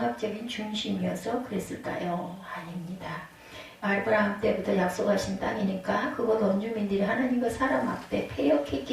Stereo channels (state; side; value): identical; both; correlation 1.00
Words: 중심이어서 그랬을까요? 아닙니다. 아브라함 때부터 약속하신 땅이니까 그곳 원주민들이 하나님과 사람 앞에